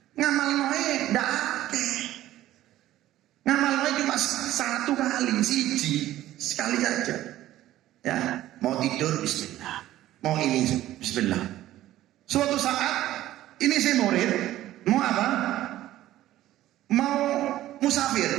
Ngamal noe ndak akeh. Ngamal noe cuma 1 kali, sekali saja. Ya, mau tidur bismillah. Mau ini bismillah. Suatu saat ini saya murid, mau apa? Mau musafir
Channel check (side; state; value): left; quieter; 14.3 dB